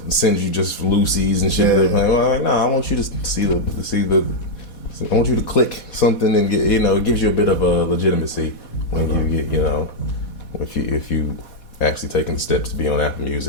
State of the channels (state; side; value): late; right; 4.1 ms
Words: send you just loosies and shit. Yeah. Well, I'm like, no, I want you to see I want you to click something and get, it gives you a bit of a legitimacy when you get, if you actually taking the steps to be on Apple